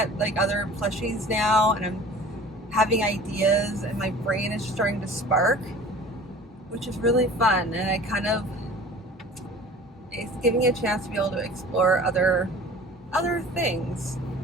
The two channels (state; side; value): normal; both; correlation 0.43